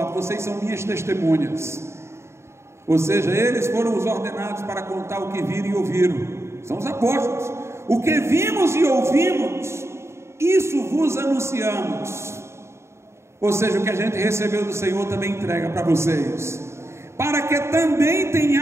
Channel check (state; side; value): late; left; 0.13 ms